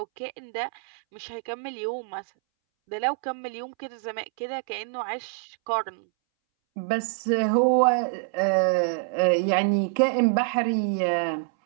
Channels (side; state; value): left; silent; 61 dB below the other